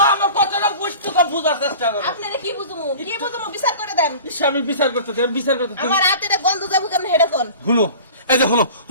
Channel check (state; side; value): inverted; both; correlation -0.40